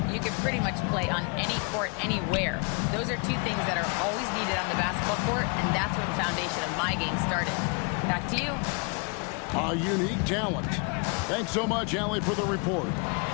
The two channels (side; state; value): right; quieter; 34.6 dB